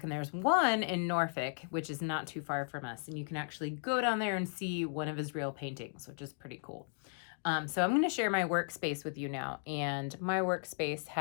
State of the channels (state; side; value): silent; right; 54 dB below the other